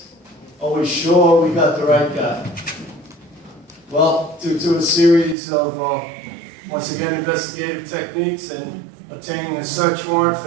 are we sure we got the right guy? Well, due to a series of, once again, investigative techniques and obtaining a search warrant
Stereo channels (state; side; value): drops out; left; at 5.4 s